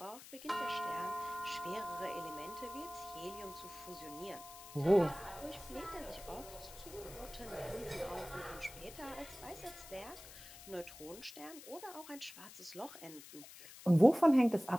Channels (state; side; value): noise; left; hiss, 16 dB below the sound